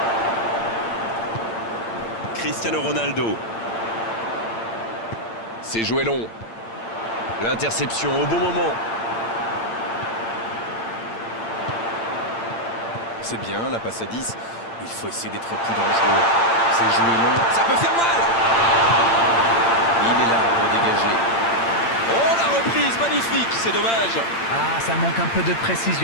Cristiano Ronaldo. C'est joué long. L'interception au bon moment. C'est bien, la passe à 10. Il faut essayer d'être plus dangereux. C'est joué long. Ça peut faire mal. Il est là pour dégager. Oh, la reprise, magnifique, c'est dommage. Ah, ça manque un peu de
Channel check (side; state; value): right; late; 8.8 ms